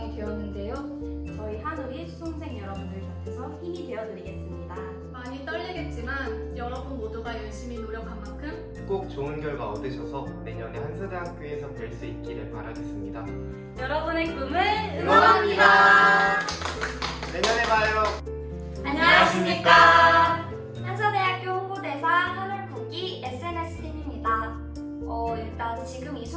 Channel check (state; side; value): identical; both; correlation 1.00